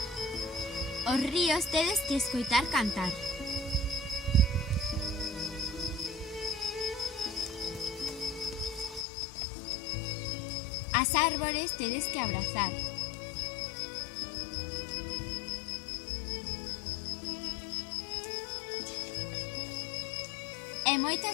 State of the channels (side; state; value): right; drops out; at 9.1 s